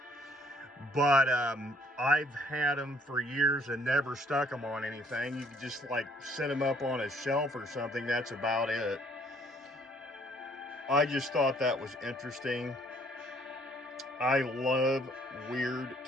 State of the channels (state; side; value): normal; both; correlation 0.62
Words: But I've had them for years and never stuck them on anything. You could just like set them up on a shelf or something. That's about it. I just thought that was interesting. I love weird